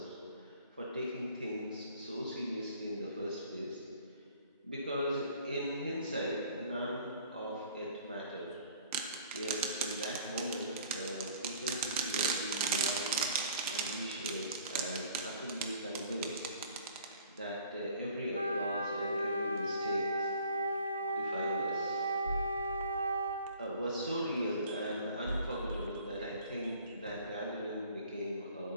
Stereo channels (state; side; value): inverted; both; correlation -0.54